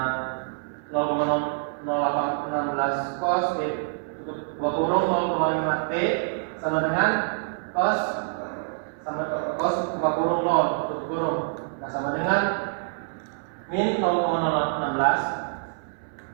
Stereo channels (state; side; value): silent; left; 61 dB below the other